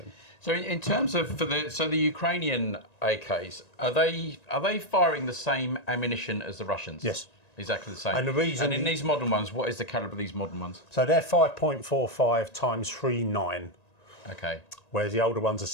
So in terms of the Ukrainian AKs, are they firing the same ammunition as the Russians? Yes. Exactly the same. And the reason... And in these modern ones, what is the calibre of these modern ones? So they're 5.45 times 3.9. Okay. Whereas the older ones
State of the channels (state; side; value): late; right; 1.9 ms